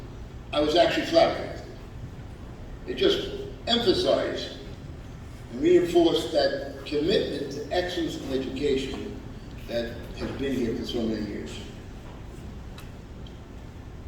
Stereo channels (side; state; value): both; identical; correlation 1.00